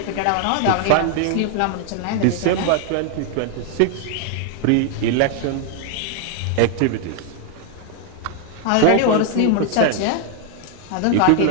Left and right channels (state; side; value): different; both; correlation 0.00